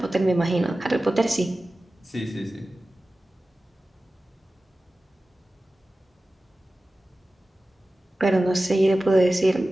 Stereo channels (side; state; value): both; normal; correlation 0.96